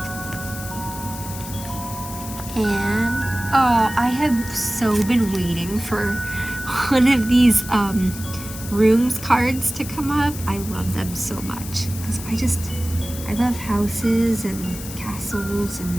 And I have so been waiting for one of these rooms cards to come up. I love them so much because I love houses and castles,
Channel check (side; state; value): left; noise; hiss, 12 dB below the sound